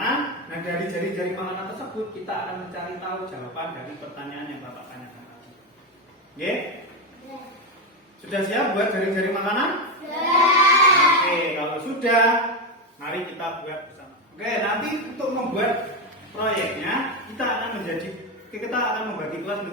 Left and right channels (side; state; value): both; normal; correlation 0.11